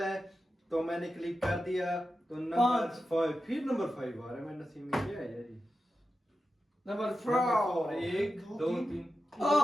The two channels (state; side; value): normal; both; correlation 0.91